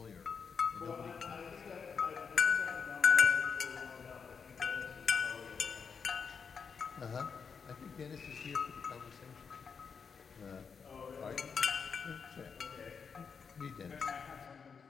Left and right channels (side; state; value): right; quieter; 6.0 dB